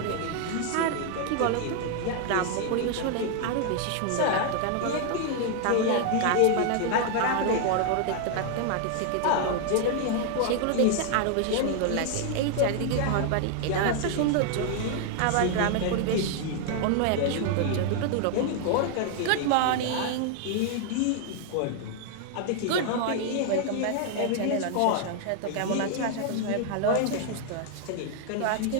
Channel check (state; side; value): different; both; correlation 0.00